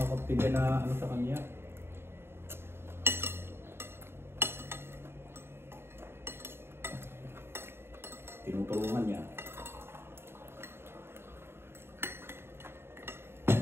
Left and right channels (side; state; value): left; late; 0.11 ms